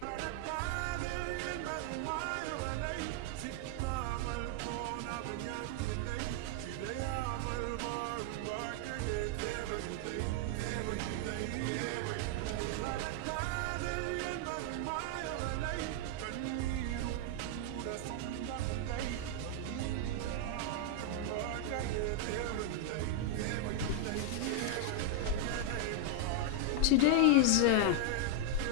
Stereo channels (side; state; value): both; different; correlation 0.00